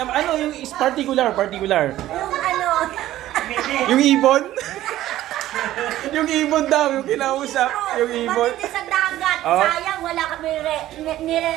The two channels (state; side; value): quieter; left; 14.2 dB